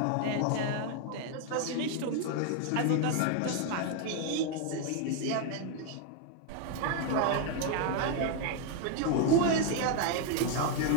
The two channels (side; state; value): both; different; correlation 0.01